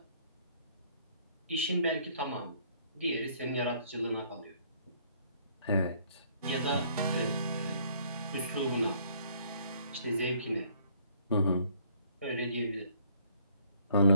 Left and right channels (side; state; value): both; inverted; correlation -0.62